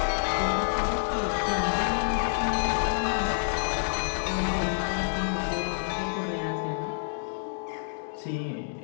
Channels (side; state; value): right; silent; digital silence